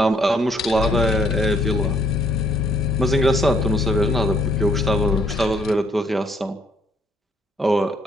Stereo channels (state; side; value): normal; both; correlation 0.65